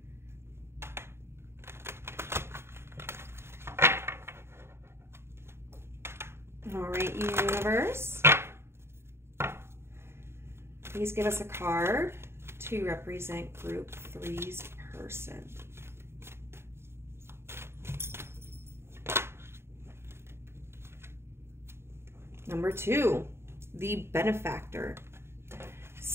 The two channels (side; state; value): left; late; 0.12 ms